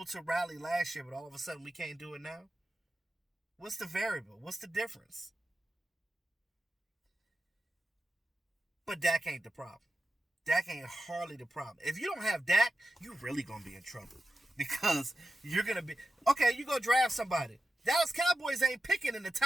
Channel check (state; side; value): normal; both; correlation 0.91